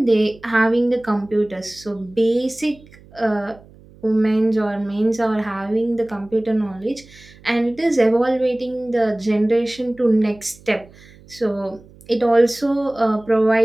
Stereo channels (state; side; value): noise; right; hum, 24 dB below the sound